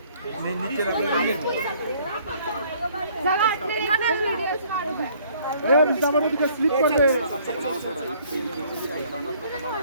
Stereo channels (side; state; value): both; inverted; correlation -0.60